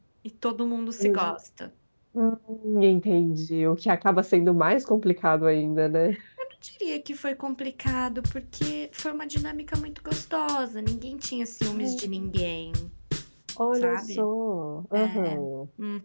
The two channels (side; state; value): both; inverted; correlation -1.00